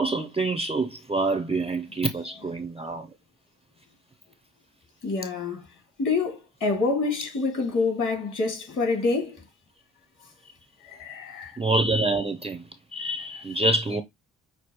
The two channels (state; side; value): normal; both; correlation 0.50